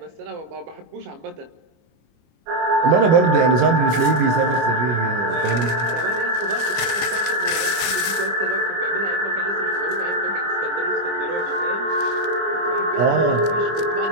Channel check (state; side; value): late; left; 25 ms